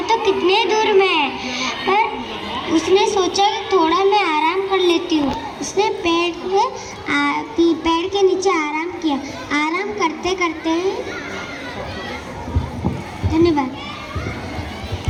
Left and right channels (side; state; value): both; identical; correlation 1.00